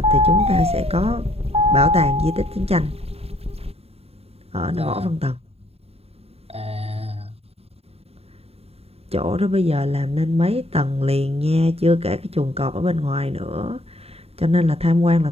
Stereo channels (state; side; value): late; left; 0.29 ms